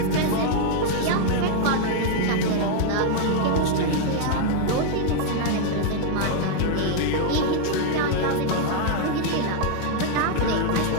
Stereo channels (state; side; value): different; both; correlation 0.00